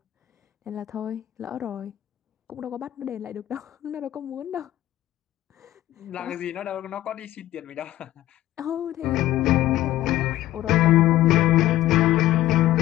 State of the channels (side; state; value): right; quieter; 14.4 dB